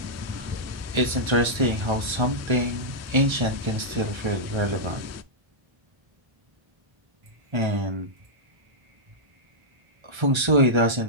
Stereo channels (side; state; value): left; late; 1.3 ms